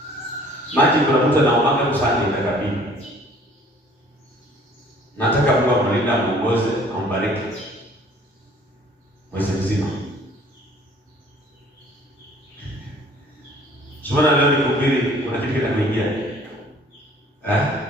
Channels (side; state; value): both; normal; correlation 0.54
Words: Maji kuna mtu anaomba kusanya itakabili. Nataka Mungu amlinde, amuongoze, ambariki mwezi mzima. Sasa leo nikuhubiri, kuna kitu kinakuingia.